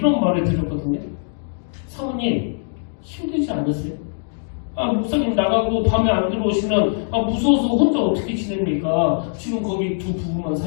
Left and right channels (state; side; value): silent; right; digital silence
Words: 말을 드렸거든요. 사모님, 힘들지 않으세요? 목사님 나가고 밤에 안 들어오시면 무서워서 혼자 어떻게 지냅니까? 지금 거기 두 부부만